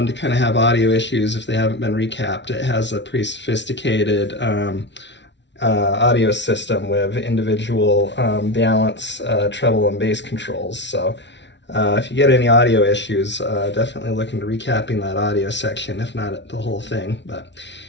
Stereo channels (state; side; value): late; right; 0.51 ms